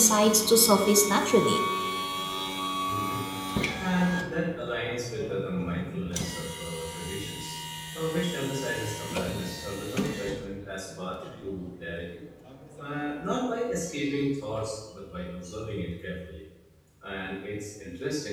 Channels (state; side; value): identical; both; correlation 1.00